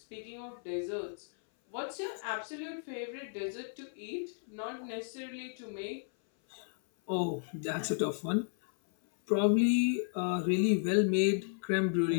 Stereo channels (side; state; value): right; silent; 55 dB below the other